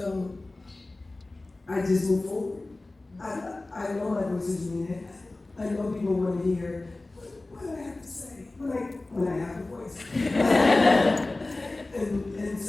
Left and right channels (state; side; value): quieter; right; 3.0 dB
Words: I just move forward. I know my voice is needed. I know people want to hear what I have to say when I have a voice. and